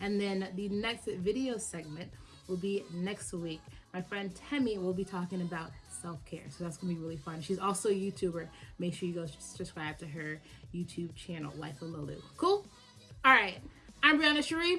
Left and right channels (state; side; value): identical; both; correlation 1.00